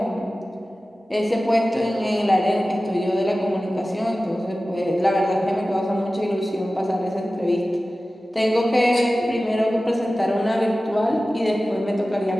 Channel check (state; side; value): normal; both; correlation 0.96